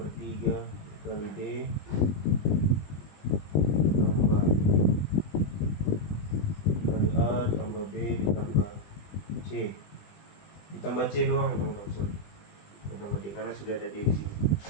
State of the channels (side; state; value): right; late; 20 ms